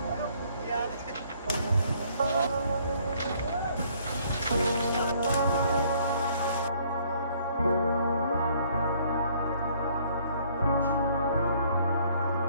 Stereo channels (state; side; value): inverted; both; correlation -0.62